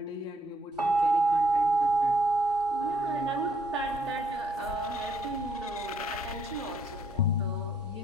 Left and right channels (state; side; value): normal; both; correlation 0.69